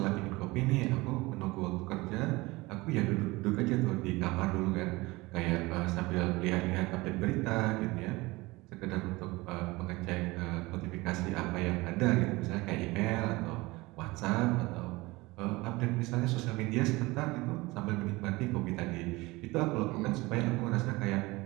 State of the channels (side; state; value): left; quieter; 21.9 dB